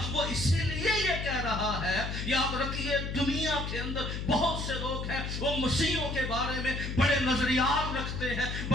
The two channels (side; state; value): left; noise; hum, 4 dB below the sound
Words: वो इसीलिए ये कह रहा है, याद रखिए दुनिया के अंदर बहुत से लोग हैं वो मसीहों के बारे में बड़े नजरियात रखते हैं,